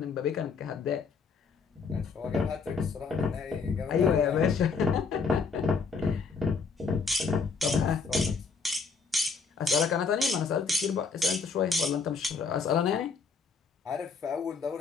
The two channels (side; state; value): right; quieter; 5.1 dB